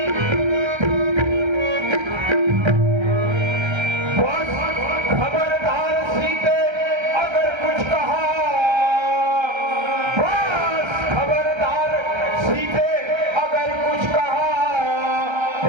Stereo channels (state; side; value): late; left; 1.3 ms